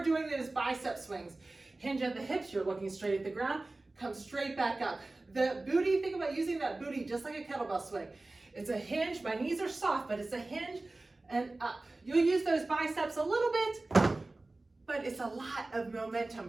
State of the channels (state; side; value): quieter; left; 3.0 dB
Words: doing those bicep swings. Hinge at the hips, you're looking straight at the ground, come straight back up. The booty, think about using that booty just like a kettlebell swing. It's a hinge, my knees are soft, but it's a hinge and up. You'll use those biceps a little bit, but it's a lot of